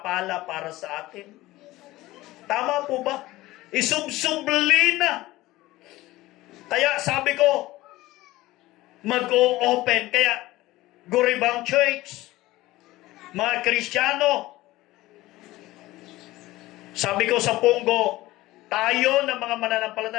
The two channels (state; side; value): quieter; right; 17.9 dB